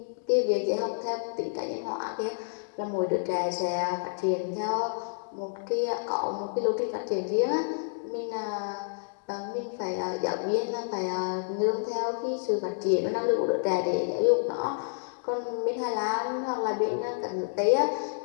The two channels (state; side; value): silent; right; digital silence